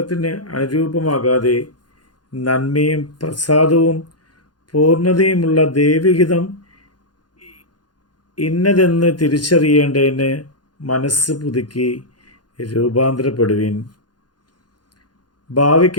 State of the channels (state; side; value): late; right; 0.70 ms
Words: അനുരൂപമാകാതെ നന്മയും പ്രസാദവും പൂർണ്ണതയുമുള്ള ദൈവഹിതം ഇന്നതെന്ന് തിരിച്ചറിയേണ്ടതിന് മനസ്സ് പുതുക്കി രൂപാന്തരപ്പെടുവിൻ.